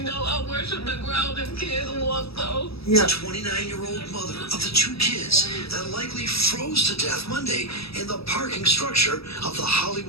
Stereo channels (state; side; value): late; right; 0.77 ms